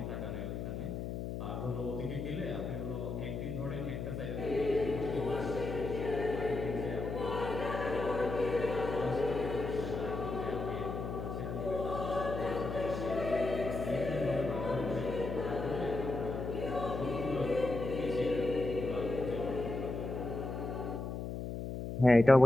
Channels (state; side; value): noise; left; hum, 5 dB below the sound